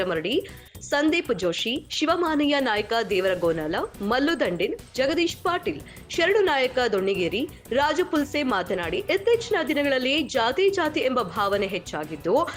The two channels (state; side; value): identical; both; correlation 1.00